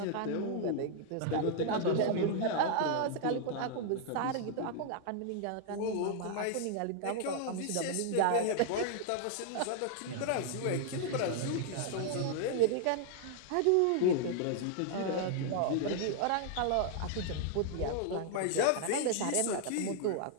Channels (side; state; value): both; different; correlation -0.01